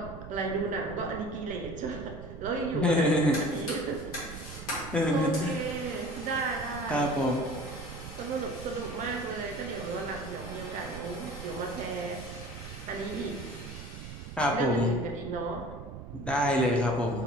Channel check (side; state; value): right; noise; rumble, 11 dB below the sound